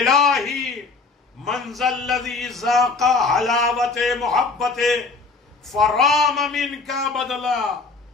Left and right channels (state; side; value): quieter; right; 4.0 dB